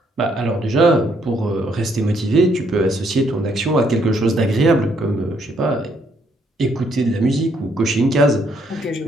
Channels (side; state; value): both; normal; correlation 0.71